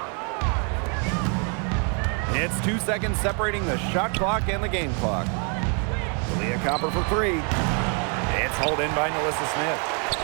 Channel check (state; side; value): quieter; left; 38.6 dB